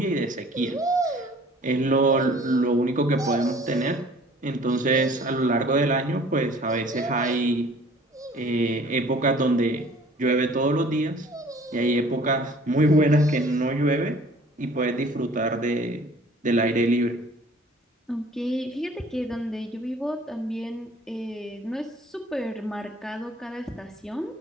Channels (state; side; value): normal; both; correlation 0.51